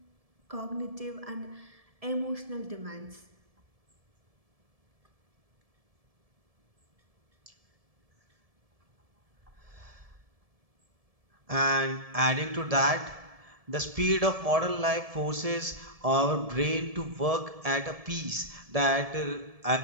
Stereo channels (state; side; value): late; left; 1.7 ms